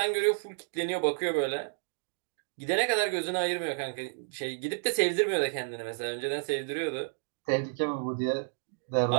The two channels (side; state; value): left; silent; digital silence